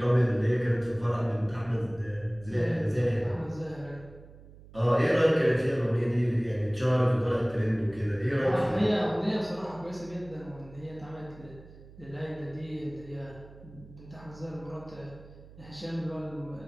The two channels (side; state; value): right; noise; hum, 20 dB below the sound